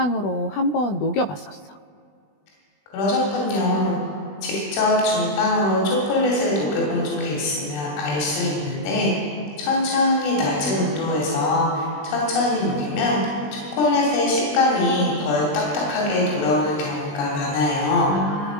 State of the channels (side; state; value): right; late; 20 ms